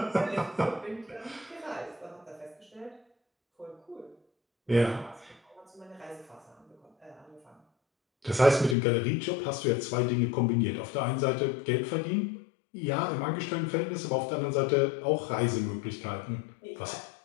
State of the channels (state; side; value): drops out; right; at 8.8 s